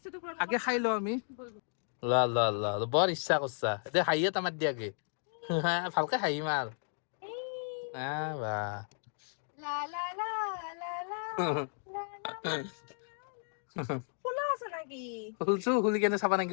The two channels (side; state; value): right; silent; 55 dB below the other